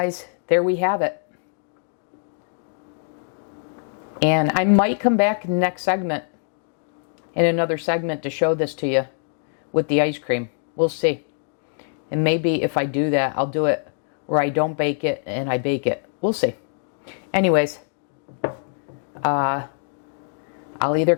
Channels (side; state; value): right; silent; digital silence